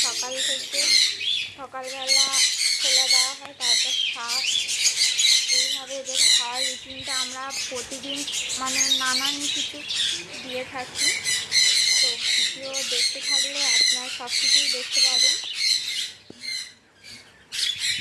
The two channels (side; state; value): both; identical; correlation 1.00